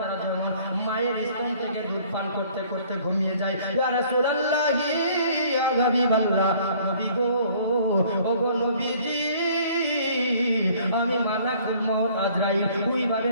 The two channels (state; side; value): inverted; both; correlation -0.56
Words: যেমন মায়ের স্তন থেকে দুধ পান করতে করতে ঘুমিয়ে যায়, ইয়া রাসূলুল্লাহ ইয়া হাবিবাল্লাহ নবী গো ও গো নবীজি আমি মালাকুল মউত আজরাইল ওইভাবে